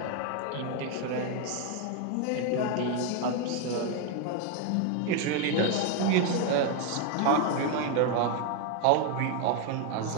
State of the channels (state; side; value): different; both; correlation 0.01